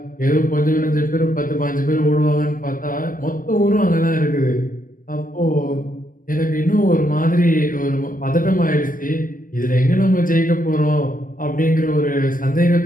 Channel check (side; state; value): right; late; 0.40 ms